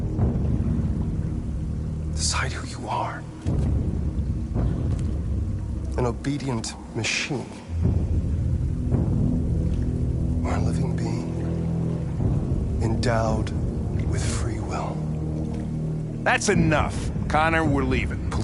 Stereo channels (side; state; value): both; identical; correlation 1.00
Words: Decide who you are. An obedient machine. Or a living being. Endowed with free will. That's enough. Connor, we're leaving. Pull